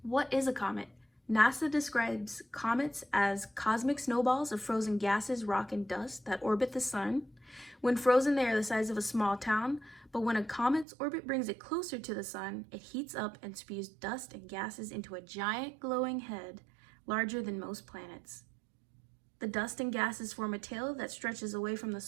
what is a comet? NASA describes comets as cosmic snowballs of frozen gases, rock, and dust that orbit the sun. When frozen, they are the size of a small town, but when a comet's orbit brings it closer to the sun, it heats up and spews dust and gases into a giant glowing head larger than most planets. The dust and gases form a tail that stretches away from the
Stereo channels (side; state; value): left; drops out; at 10.9 s